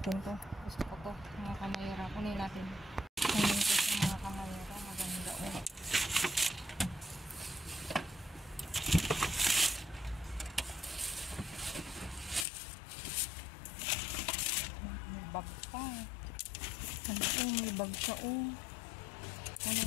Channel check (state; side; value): drops out; right; at 12.5 s